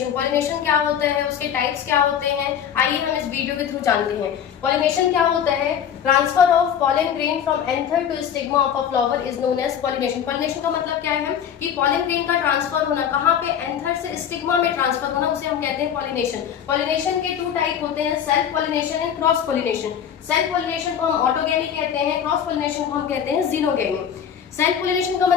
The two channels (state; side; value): quieter; right; 8.7 dB